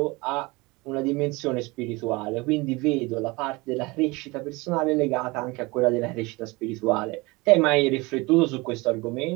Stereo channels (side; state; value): left; quieter; 24.1 dB